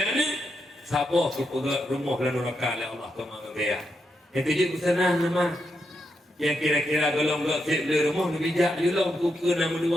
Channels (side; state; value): both; normal; correlation 0.83